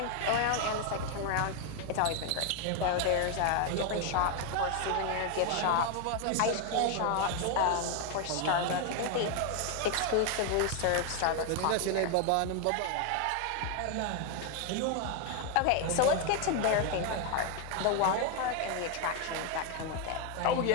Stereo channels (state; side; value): different; both; correlation 0.01